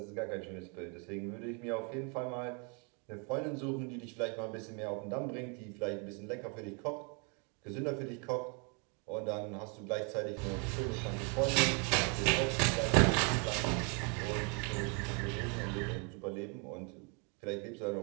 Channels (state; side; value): quieter; left; 35.6 dB